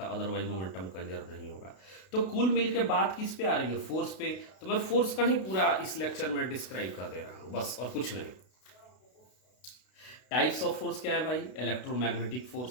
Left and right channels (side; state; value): right; late; 32 ms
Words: है, अदरवाइज मोमेंटम कंजर्व नहीं होगा। तो कुल मिल के बात किस पे आ रही है, फोर्स पे। तो मैं फोर्स का ही पूरा इस लेक्चर में डिस्क्राइब कर दे रहा हूं, बस, और कुछ नहीं। टाइप्स ऑफ फोर्स क्या है भाई, इलेक्ट्रोमैग्नेटिक